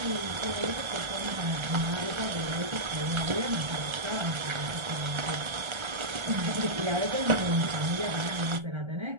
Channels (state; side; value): late; left; 1.3 ms